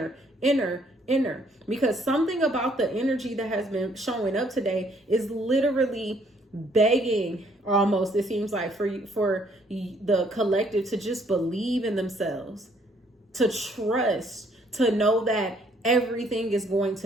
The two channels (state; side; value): normal; both; correlation 0.65